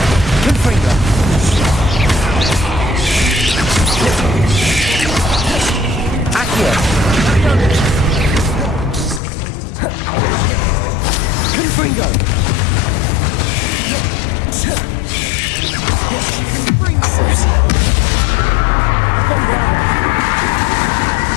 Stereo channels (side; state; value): right; drops out; at 9.2 s